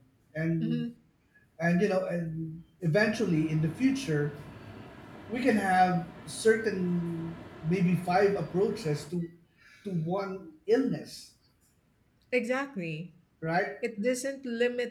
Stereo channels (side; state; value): both; identical; correlation 1.00